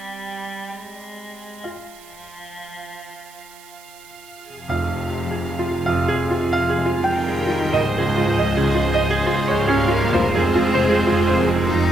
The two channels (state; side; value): noise; right; hiss, 22 dB below the sound